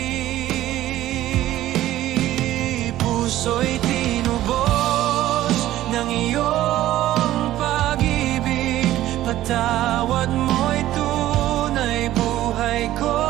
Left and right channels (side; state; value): left; quieter; 14.2 dB